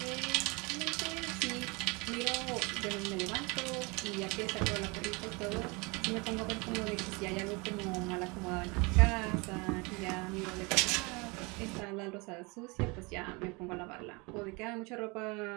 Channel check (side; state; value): left; quieter; 27.8 dB